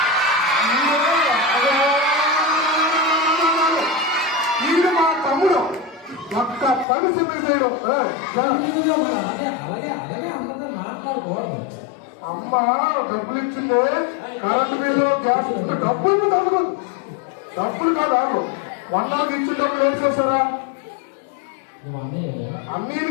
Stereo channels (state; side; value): drops out; right; at 6.9 s